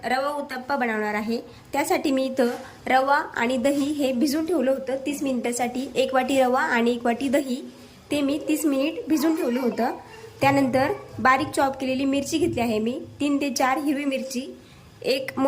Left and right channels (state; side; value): identical; both; correlation 1.00